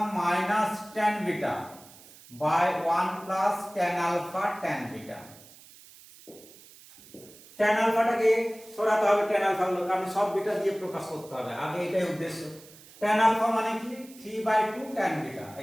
- tan beta by 1 + tan alpha tan beta। tan আলফাটাকে সরাতে হবে, tan আলফা গুলো, কারণ সব বিটা দিয়ে প্রকাশ করতে হবে, আগে এটাই উদ্দেশ্য। tan আলফা মানে কি, 3/2 tan beta,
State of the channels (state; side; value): noise; right; hiss, 22 dB below the sound